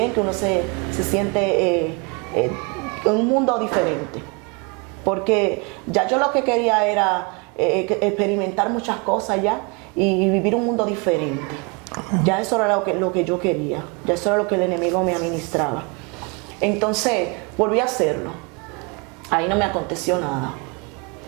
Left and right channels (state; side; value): quieter; left; 31.5 dB